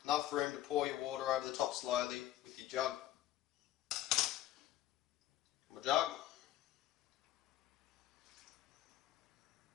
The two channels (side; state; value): right; quieter; 13.5 dB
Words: enough room to pour your water over the top slowly with your jug. My jug.